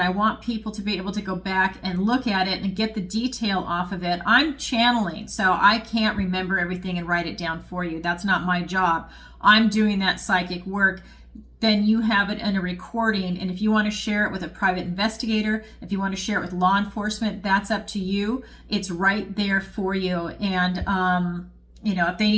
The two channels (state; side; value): identical; both; correlation 1.00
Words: I want people to be able to go back and look at it and get the detail off of it. I'm channeling, so I can't remember everything and write it down for you. That's not my job. I'm doing that psychic work. Then you have it in a recording, and if you want to share it with a private investigator, if you want to share it with law enforcement, that's up to you. It's right there for you. And if they